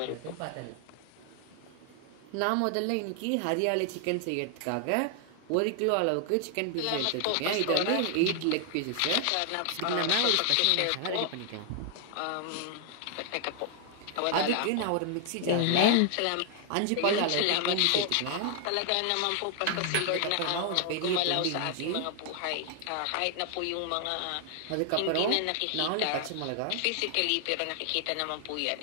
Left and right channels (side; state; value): both; different; correlation 0.00